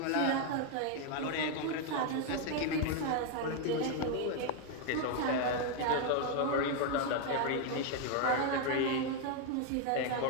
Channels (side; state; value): both; different; correlation 0.01